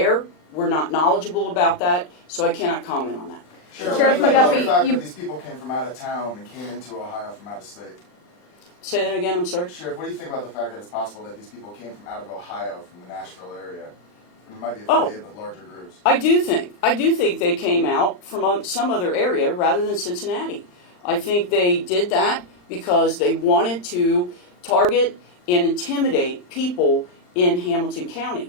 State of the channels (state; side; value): late; right; 39 ms